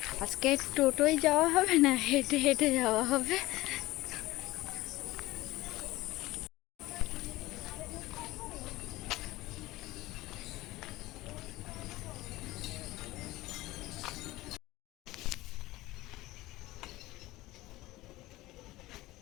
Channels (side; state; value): right; quieter; 18.3 dB